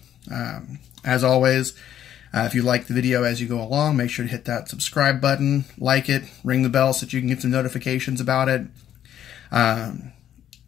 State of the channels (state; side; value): quieter; right; 10.7 dB